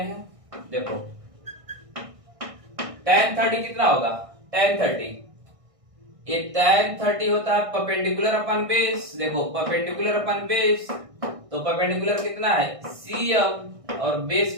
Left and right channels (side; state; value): left; late; 1.6 ms